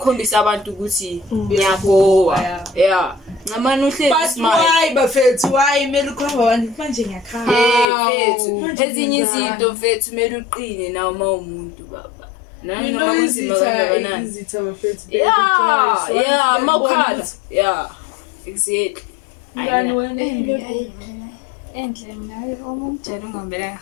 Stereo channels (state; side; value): drops out; right; at 7.9 s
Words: abantu ukuthi ngiyakho. Yeah. Ngamani uhlezi smile. Why bafethu why mele ukhomba abantu manje ngiyakhala. Fethu ezinye izinto fethu mele uqine nawe uma umuntu baba. Noma kunzima kangakanani. Yeah, mawukhala. Yeah. Exactly. Enhle naye omumtshela ungambela.